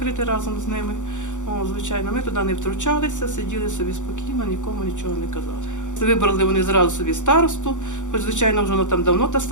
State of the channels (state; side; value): late; right; 0.85 ms